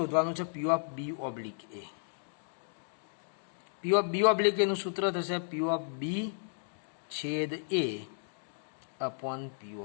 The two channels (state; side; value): silent; right; digital silence